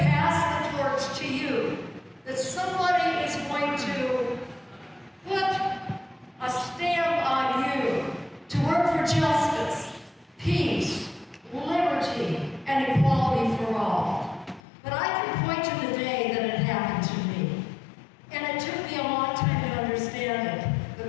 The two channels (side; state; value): right; drops out; at 14.6 s